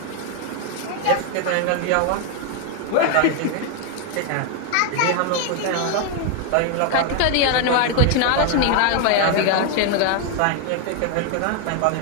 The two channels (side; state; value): both; different; correlation 0.00